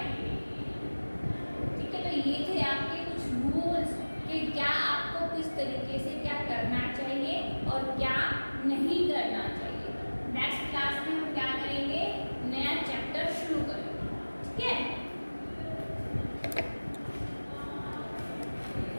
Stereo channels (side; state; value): both; inverted; correlation -1.00